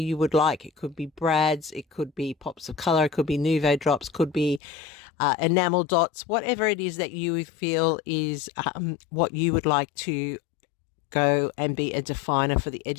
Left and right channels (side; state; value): right; drops out; at 4.6 s